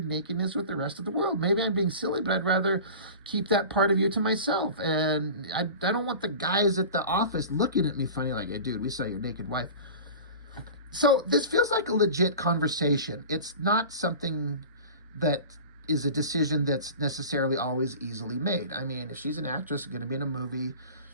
with the rest of the world. Maybe I'm being silly, but I'd rather keep that part of you to myself. And I don't want the guys at the office looking at me funny like, hey, dude, we saw your naked wife. So this feels like a legit conversation. It's not something that is a decision that's necessarily always easily made. If she's an actress going to be in a movie,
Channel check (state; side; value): inverted; both; correlation -0.36